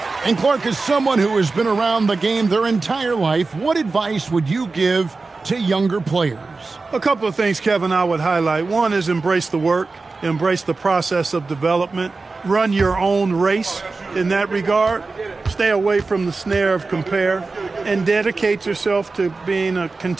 And Clark, is someone who has been around the game their entire life, what advice would you give to younger players? A couple of things, Kevin, I would highlight. One is embrace the work, embrace the process of development, run your own race in that regard, stay away from the snare of compare, and dedicate yourself to being a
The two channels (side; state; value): left; quieter; 3.9 dB